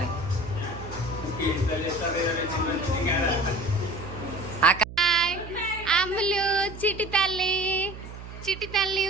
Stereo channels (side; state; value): right; noise; hum, 13 dB below the sound